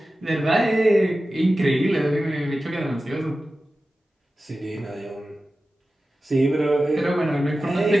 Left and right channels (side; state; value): both; normal; correlation 0.94